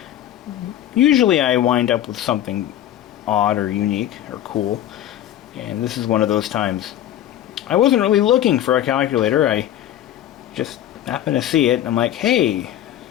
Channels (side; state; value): right; quieter; 11.9 dB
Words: usually I wind up with something odd or unique or cool, and this is one of those times. I wasn't really looking for a calculator. I just happened to see it, and I'm like, hey,